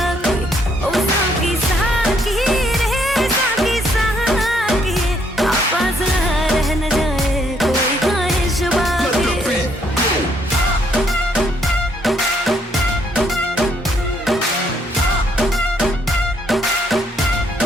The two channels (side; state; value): both; normal; correlation 0.70